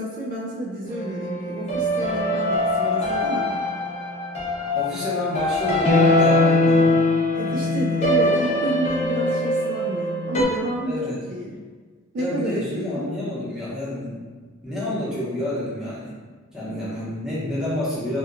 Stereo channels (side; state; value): both; normal; correlation 0.41